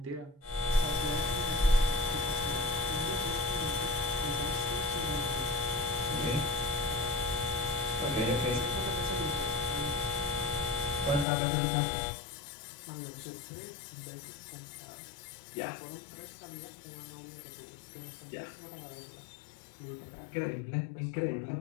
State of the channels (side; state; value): right; drops out; at 11.2 s